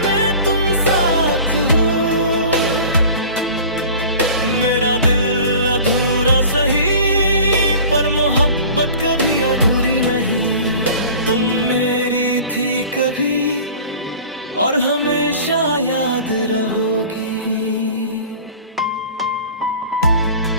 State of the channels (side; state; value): both; inverted; correlation -0.41